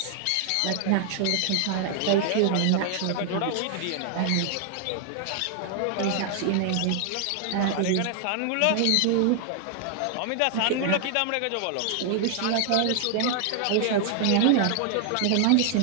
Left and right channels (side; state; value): both; different; correlation 0.00